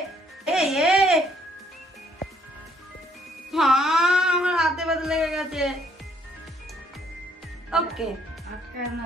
আমার হাতে ব্যথা লেগে গেছে।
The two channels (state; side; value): normal; both; correlation 0.66